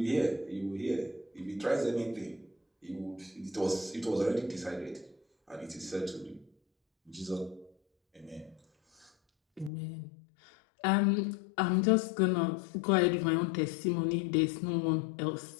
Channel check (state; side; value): drops out; right; at 9.7 s